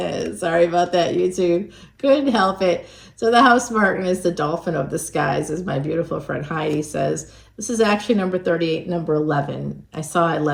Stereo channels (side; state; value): both; identical; correlation 1.00